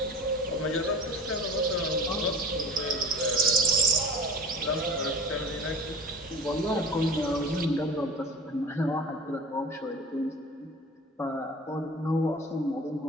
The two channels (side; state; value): both; normal; correlation 0.38